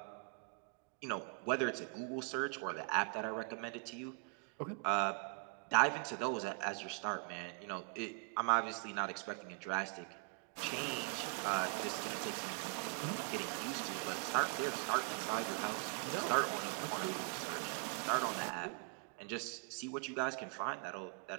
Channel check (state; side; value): quieter; left; 34.3 dB